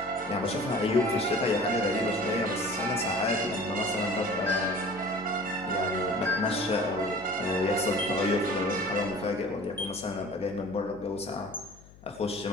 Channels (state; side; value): noise; left; hum, 22 dB below the sound